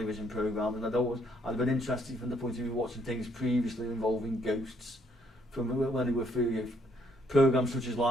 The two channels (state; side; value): normal; both; correlation 0.69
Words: programme, and I'd been interested from the point of view of watching things previously involving ghosts, from when they were through programmes such as